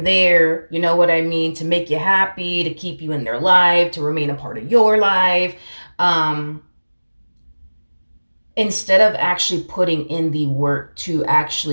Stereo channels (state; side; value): inverted; both; correlation -1.00